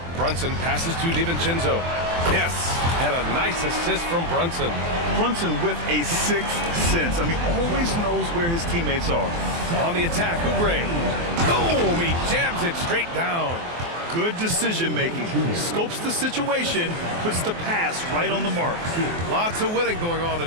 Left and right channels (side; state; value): left; late; 24 ms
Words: Brunson passes to DiVincenzo. Yes, and a nice assist from Brunson. Brunson with a sixth sense. I mean, always knows where his teammates are. On the attack, Oubre. Boom, he jams it straight down. Good decision-making. Scopes the situation, puts the pass right on the mark. Lots of winning going on